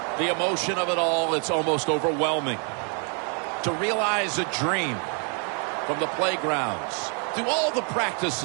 The emotion of it all, it's almost overwhelming. To realize a dream from the playgrounds, through all the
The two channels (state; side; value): quieter; left; 39.4 dB